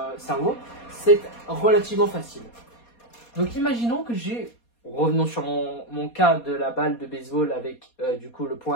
cerveau, c'est relativement facile. Donc imaginons que revenons sur mon cas de la balle de baseball avec du coup le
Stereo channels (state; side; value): late; right; 4.2 ms